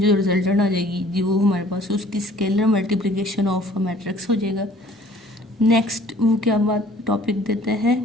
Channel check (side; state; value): both; normal; correlation 0.53